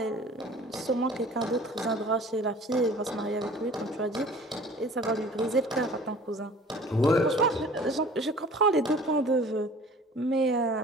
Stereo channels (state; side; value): normal; both; correlation 0.47